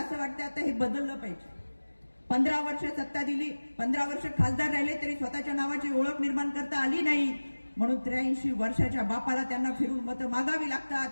वाटतं आता हे बदललं पाहिजे। 15 वर्ष सत्ता दिली, 15 वर्ष खासदार राहिले तरी स्वतःच्या नावाची ओळख निर्माण करता आली नाही, म्हणून 83 वर्षाच्या बापाला त्यांना फिरून मतं मागावी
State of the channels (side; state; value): both; inverted; correlation -1.00